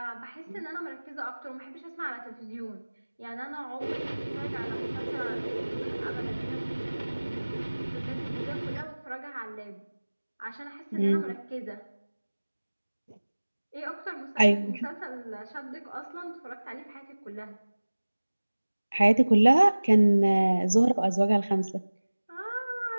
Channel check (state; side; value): inverted; both; correlation -1.00